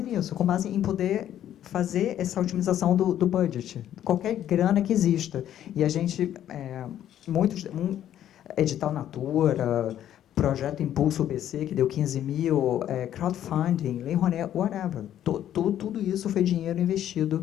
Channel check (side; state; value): right; quieter; 11.2 dB